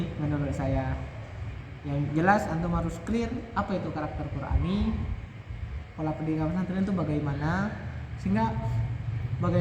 menurut saya. Yang jelas antum harus clear apa itu karakter Qur'ani, pola pendidikan pesantren itu bagaimana, sehingga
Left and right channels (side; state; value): both; identical; correlation 1.00